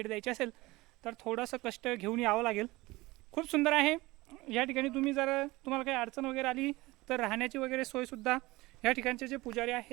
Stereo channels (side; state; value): left; quieter; 20.7 dB